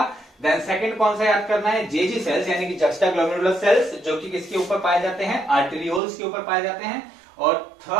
देन सेकंड कौन सा याद करना है? जेजी सेल्स, यानी कि जक्स्टा ग्लोमेरुलर सेल्स, जो कि किसके ऊपर पाए जाते हैं? आर्टेरियोल्स के ऊपर पाए जाते हैं। और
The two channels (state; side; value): drops out; left; at 6.0 s